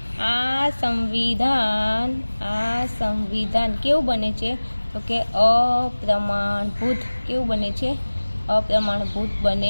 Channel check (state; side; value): inverted; both; correlation -1.00